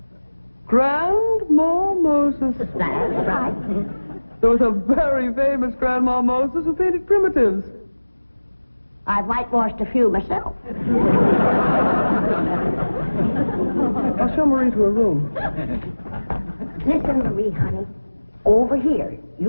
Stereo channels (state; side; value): inverted; both; correlation -1.00